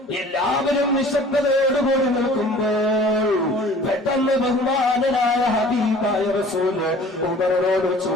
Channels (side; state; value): both; normal; correlation 0.48